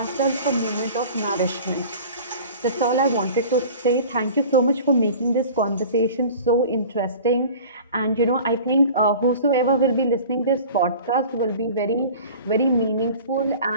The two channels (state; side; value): inverted; both; correlation -0.41